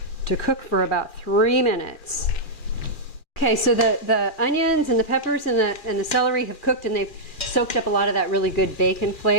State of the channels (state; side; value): late; right; 2.3 ms